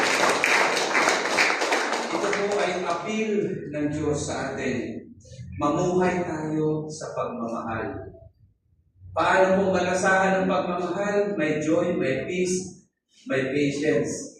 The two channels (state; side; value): identical; both; correlation 1.00